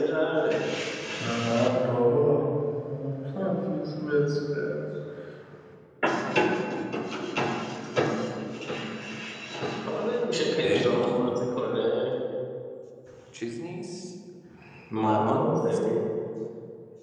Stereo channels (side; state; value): both; identical; correlation 1.00